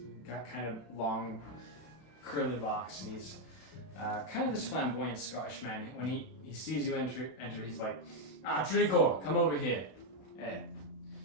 got kind of long curly locks, and he's kind of this flamboyant Scottish man. When he sees you enter, he's like, Tredicor, come over here.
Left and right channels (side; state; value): right; late; 32 ms